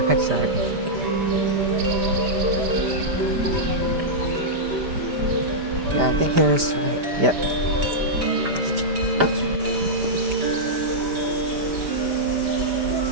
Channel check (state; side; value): late; left; 5.0 ms